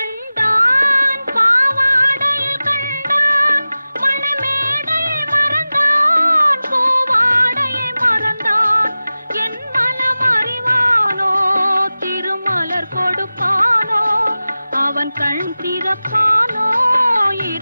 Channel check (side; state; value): both; inverted; correlation -0.96